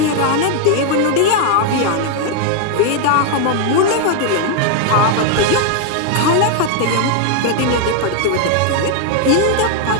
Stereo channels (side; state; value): both; different; correlation 0.00